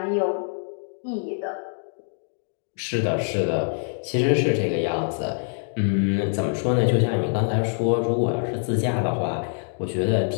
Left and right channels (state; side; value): silent; right; 62 dB below the other